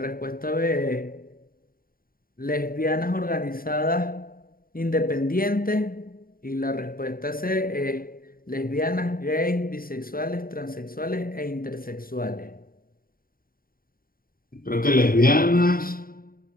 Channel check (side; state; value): right; late; 0.42 ms